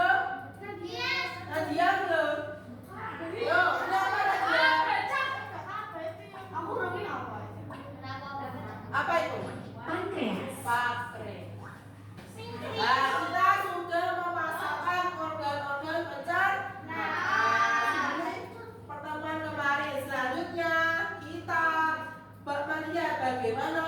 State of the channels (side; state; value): both; identical; correlation 1.00